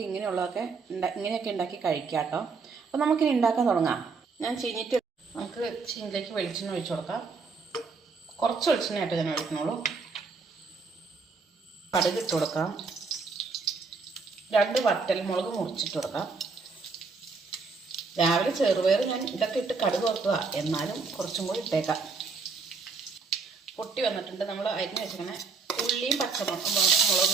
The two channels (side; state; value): left; quieter; 4.6 dB